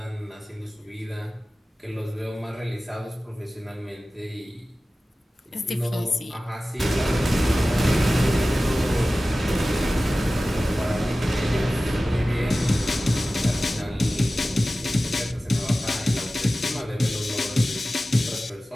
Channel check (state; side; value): normal; both; correlation 0.96